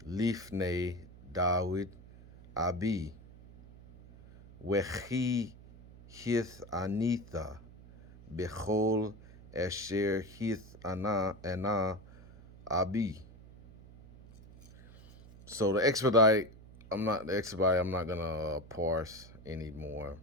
Lifnei David Abi Wechi Hith Anitha Bechol Asher Hith Ana Abi. So the expedite, I'm not gonna parse anymore,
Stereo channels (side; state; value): right; noise; hum, 20 dB below the sound